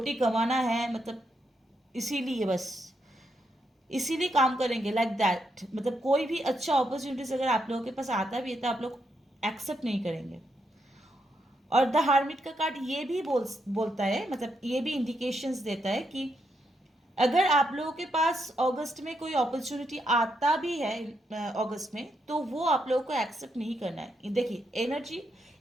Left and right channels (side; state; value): both; normal; correlation 0.80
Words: कमाना है, मतलब इसीलिए बस इसीलिए काम करेंगे लाइक दैट। मतलब कोई भी अच्छा अपॉर्चुनिटीज अगर आप लोगों के पास आता भी है तो आप लोग एक्सेप्ट नहीं करेंगे। और द हार्मिट का कार्ड ये भी बोलता है, मतलब ये भी इंडिकेशंस देता है कि अगर आप लोगों के पास अगस्त में कोई अपॉर्चुनिटी आता भी है अगस्त में तो वो आप लोगों को एक्सेप्ट नहीं करना है। देखिए एनर्जी,